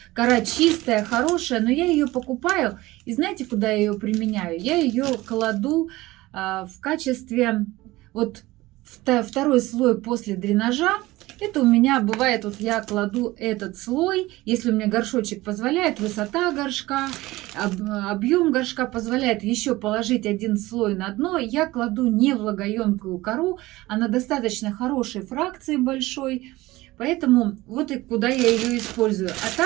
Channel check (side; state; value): left; quieter; 18.9 dB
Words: Кора чистая, хорошая, но я ее покупаю. И знаете, куда я ее применяю? Я ее кладу в качестве вот второй слой после дренажа. Это у меня бывает, вот я кладу этот слой, если у меня горшочек позволяет, высота горшка, объем горшка позволяет еще положить один слой на дно, я кладу не влагоемкую кору, она достаточно хорошей фракции большой, поэтому вот и куда я ее использую. А